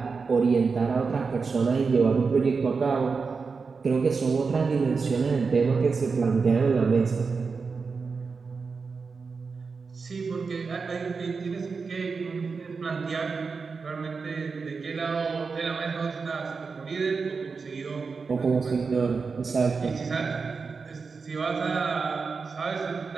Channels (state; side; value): quieter; left; 4.9 dB